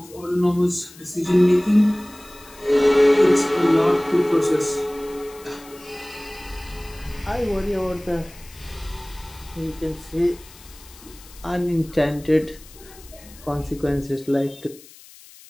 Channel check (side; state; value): left; noise; hiss, 22 dB below the sound